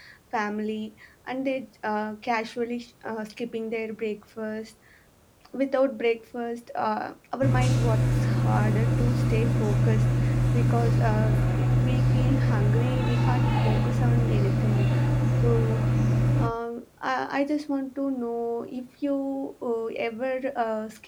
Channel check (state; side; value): identical; both; correlation 1.00